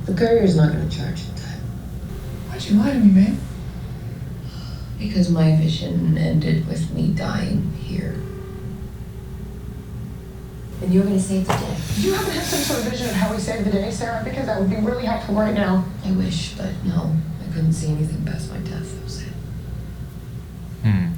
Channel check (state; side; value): identical; both; correlation 1.00